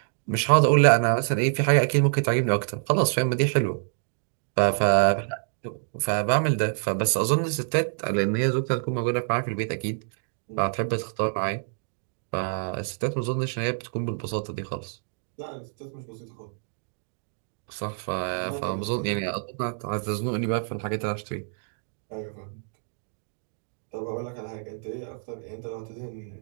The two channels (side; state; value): left; silent; digital silence